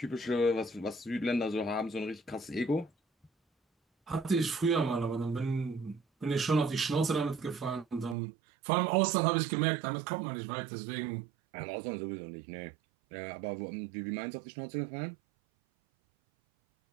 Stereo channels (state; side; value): drops out; left; at 8.2 s